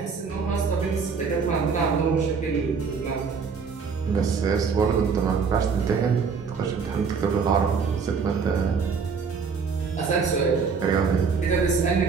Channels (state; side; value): quieter; left; 5.5 dB